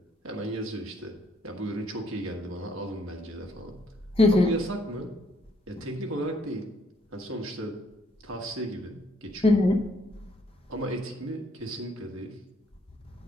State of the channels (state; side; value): normal; both; correlation 0.68